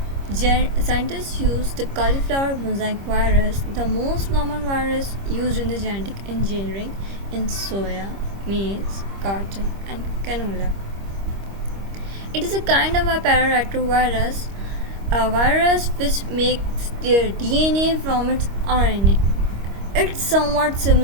Scientists use the cauliflower mosaic virus, the most common virus used in the genetic engineering in soya, maize, cotton, and canola. It is a kind of a pararetrovirus, a virus which makes their DNA from its RNA. It's somewhat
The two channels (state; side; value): late; left; 25 ms